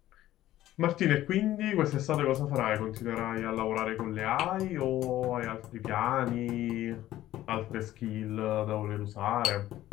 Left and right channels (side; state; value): right; quieter; 14.1 dB